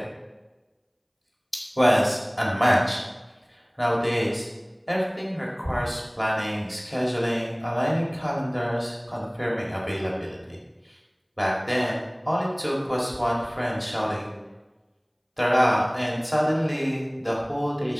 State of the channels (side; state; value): both; identical; correlation 1.00